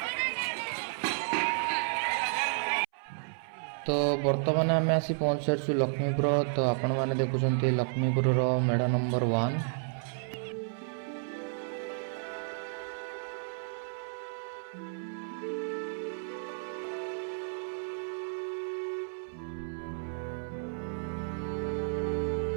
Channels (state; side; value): silent; left; 56 dB below the other